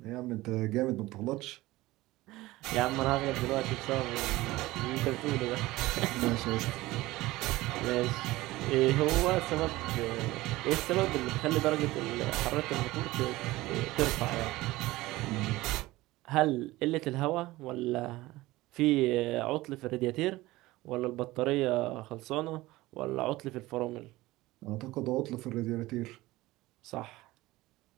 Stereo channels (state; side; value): quieter; left; 18.7 dB